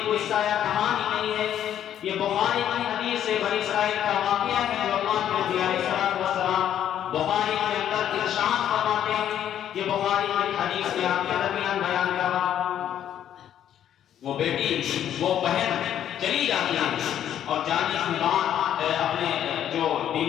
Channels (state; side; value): quieter; right; 10.4 dB